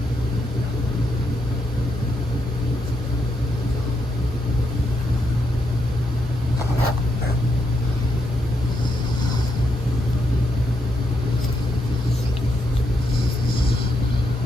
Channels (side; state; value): both; normal; correlation 0.80